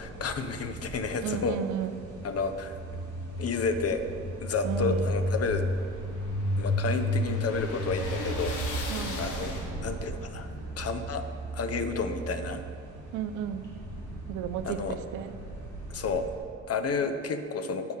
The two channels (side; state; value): both; normal; correlation 0.28